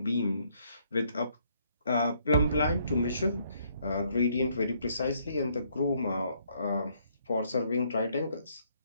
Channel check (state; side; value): inverted; both; correlation -0.69